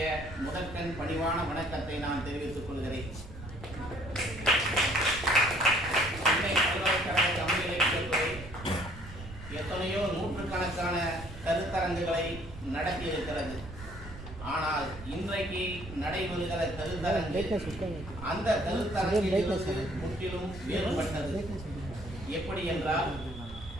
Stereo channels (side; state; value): right; noise; rumble, 13 dB below the sound